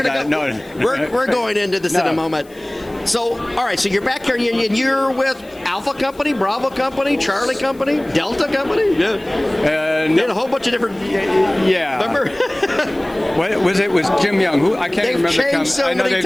We're going into this in a moment. So, all right, so you're back here, and you're with Alpha Company, Bravo Company, Charlie Company, Delta Company? Yeah. No. A whole bunch of different... Yeah. Remember? What was it? Was Jim Young? Who I can't remember. They've changed so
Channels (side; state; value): left; noise; hiss, 27 dB below the sound